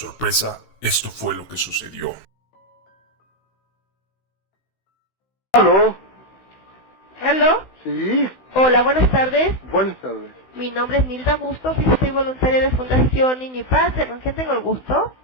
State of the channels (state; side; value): late; right; 16 ms